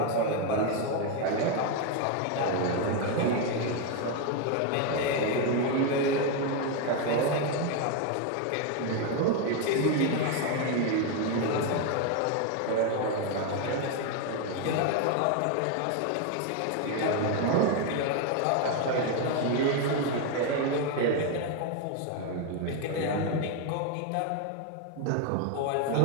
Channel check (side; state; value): both; different; correlation 0.01